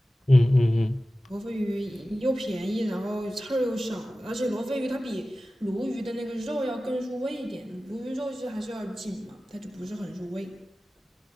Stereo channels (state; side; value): normal; both; correlation 0.96